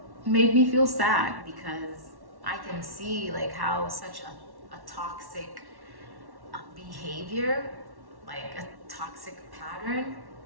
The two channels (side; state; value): left; late; 1.1 ms